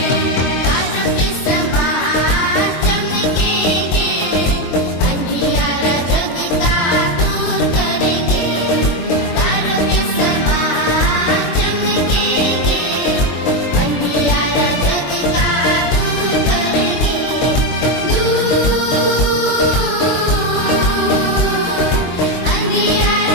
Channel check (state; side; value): late; right; 23 ms